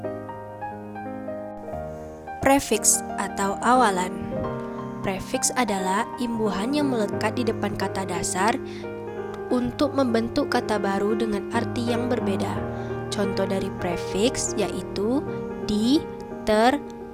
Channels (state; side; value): identical; both; correlation 1.00